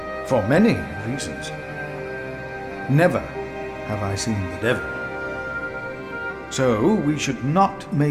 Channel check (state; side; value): identical; both; correlation 1.00